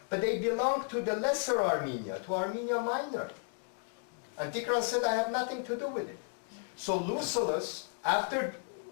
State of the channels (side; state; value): right; silent; 55 dB below the other